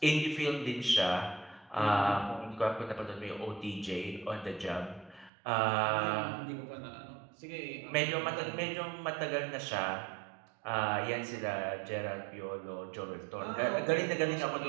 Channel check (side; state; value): left; drops out; at 5.3 s